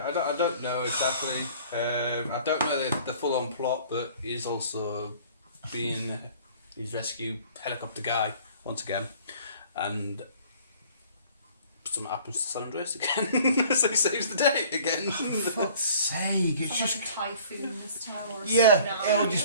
I don't know exactly. I don't know the full-on plot, but he's also he's rescued helicopter guy once again, and something happens to San Andreas again, so he saves the day again. For fuck's sake, it's Just just... like a typhoon this time or a Yeah, tsunami it'll or just...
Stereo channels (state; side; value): inverted; both; correlation -0.51